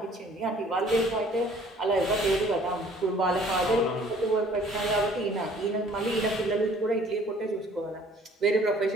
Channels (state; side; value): normal; both; correlation 0.55